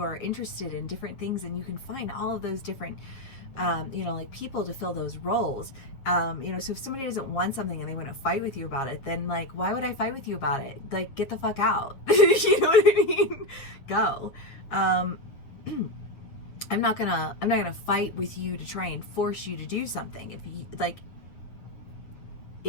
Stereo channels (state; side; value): late; right; 7.6 ms